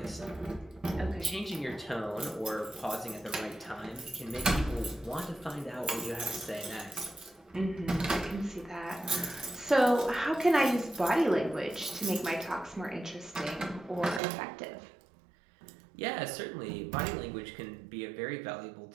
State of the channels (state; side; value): drops out; left; at 14.2 s